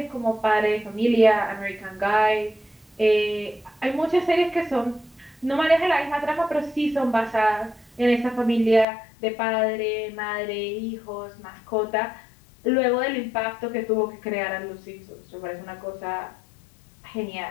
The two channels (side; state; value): right; drops out; at 8.8 s